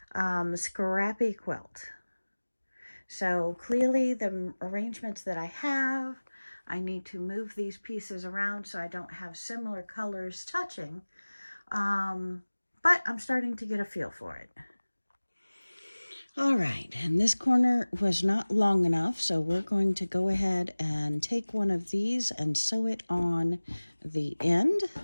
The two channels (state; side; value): inverted; both; correlation -1.00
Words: Scrappy quilt. So clearly the arrangements that I have, I need to move these pieces around so I don't have similar colors touching. But I'm starting to get a feel for it. All right, and this corner was not long enough, so we're going to go ahead and take one of these and sew it on the end.